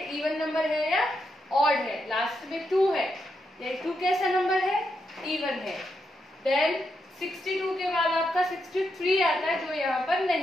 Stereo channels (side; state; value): both; normal; correlation 0.82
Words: इवन नंबर है या ऑड है। लास्ट में 2 है, ये 2 कैसा नंबर है, इवन है। देन 62 के बाद आपका 63 आता है जो यहाँ पर